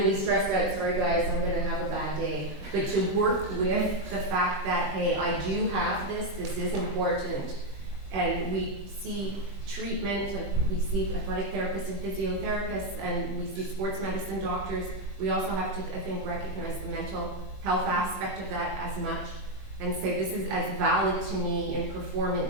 stressed out, sorry guys, I'm going to have a bad day, but to work with the fact that, hey, I do have this is important. And we see treatment, and we see athletic therapists and physiotherapists, and we see sports medicine doctors. We also have to, I think, recognize the mental health aspect of that as much, and say this is as valid to me in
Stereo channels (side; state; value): left; late; 21 ms